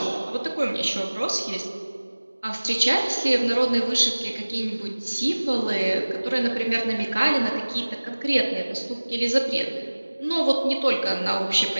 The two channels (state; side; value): inverted; both; correlation -1.00